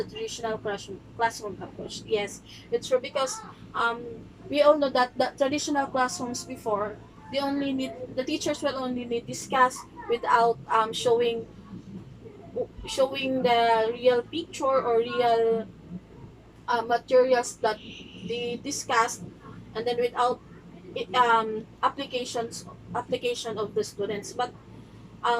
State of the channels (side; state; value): both; identical; correlation 1.00